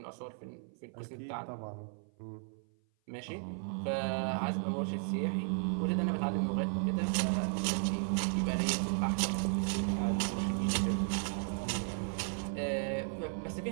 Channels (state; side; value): silent; left; 54 dB below the other